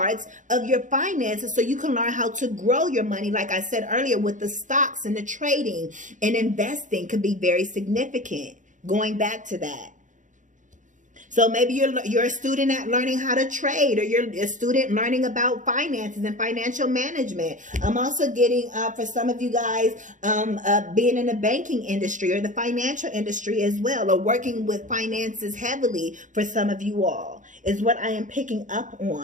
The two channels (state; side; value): late; left; 0.37 ms